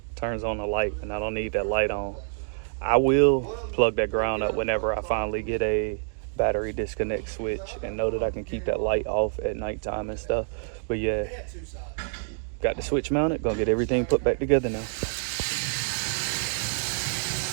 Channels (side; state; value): left; silent; digital silence